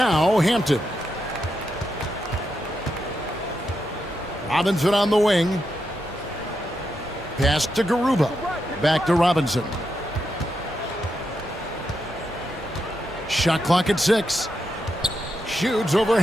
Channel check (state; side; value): normal; both; correlation 0.84